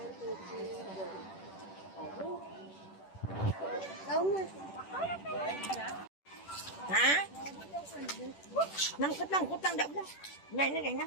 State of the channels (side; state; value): right; late; 10 ms